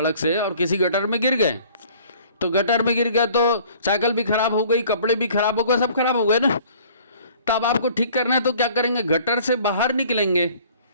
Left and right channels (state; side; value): inverted; both; correlation -0.53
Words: से और किसी गटर में गिर गए, तो गटर में गिर गए तो साइकिल भी खराब हो गई, कपड़े भी खराब हो गए, सब खराब हो गए ना। तब आपको ठीक करना है तो क्या करेंगे? गटर से बाहर निकलेंगे